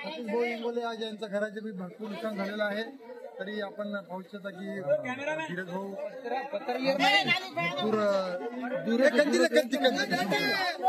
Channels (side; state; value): both; identical; correlation 1.00